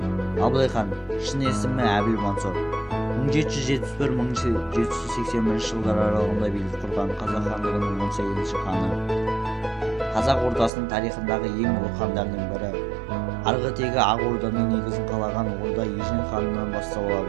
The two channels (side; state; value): left; drops out; at 10.7 s